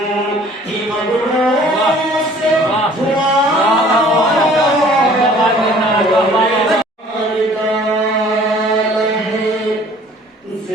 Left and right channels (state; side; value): normal; both; correlation 0.53